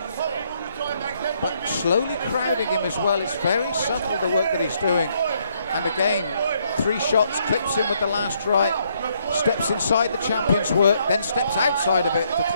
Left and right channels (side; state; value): both; inverted; correlation -0.71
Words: But slowly crowding him as well. It's very subtle, the work that he's doing. And again, 3 shots, clips in with the last right. Steps inside the champion's work, then steps outside of it to